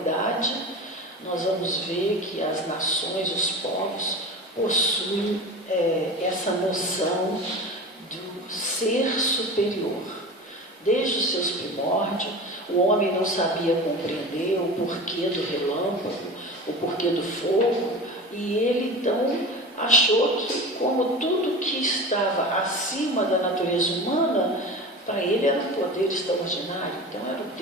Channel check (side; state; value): both; normal; correlation 0.31